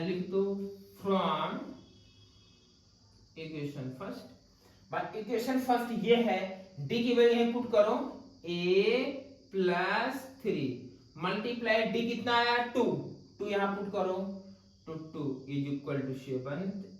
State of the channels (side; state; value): both; identical; correlation 1.00